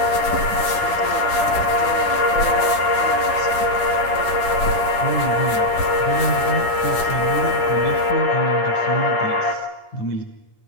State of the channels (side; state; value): right; late; 10 ms